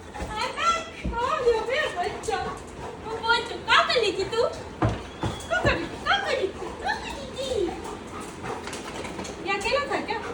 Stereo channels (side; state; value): both; identical; correlation 1.00